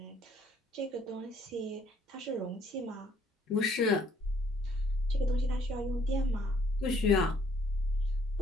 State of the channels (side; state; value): both; normal; correlation 0.64